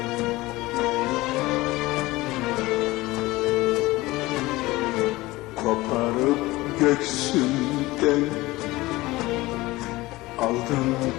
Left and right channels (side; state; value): right; quieter; 19.7 dB